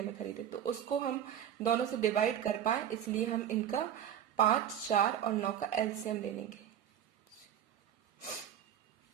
में खरीदे, तो उसको हम दोनों से डिवाइड कर पाए, इसलिए हम इनका 5, 4 और 9 का एलसीएम ले लेंगे।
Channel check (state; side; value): quieter; left; 9.9 dB